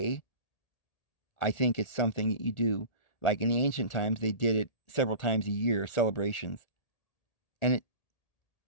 I think it's something that you do. Like in the ancient times, they did it several times a year, celebrations. And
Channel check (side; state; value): right; late; 1.8 ms